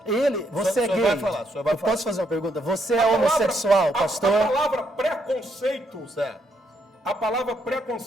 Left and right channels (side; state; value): both; normal; correlation 0.75